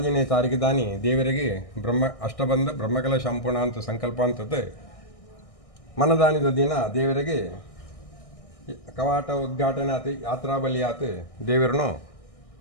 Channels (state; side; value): late; right; 1.6 ms